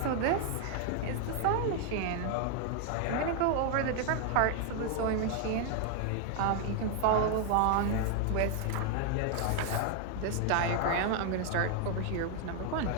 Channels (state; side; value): different; both; correlation 0.00